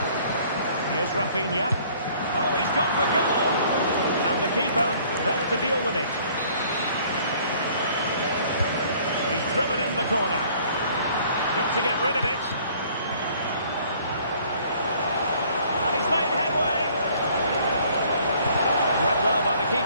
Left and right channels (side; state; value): both; inverted; correlation -0.57